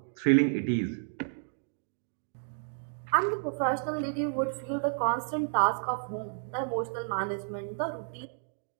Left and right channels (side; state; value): left; silent; digital silence